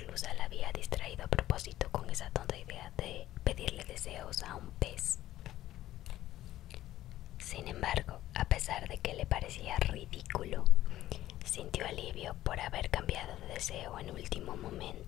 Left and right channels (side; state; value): right; quieter; 14.1 dB